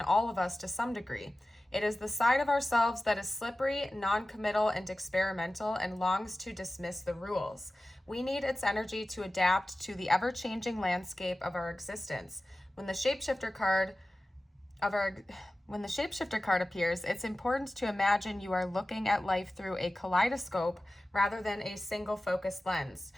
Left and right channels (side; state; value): both; normal; correlation 0.96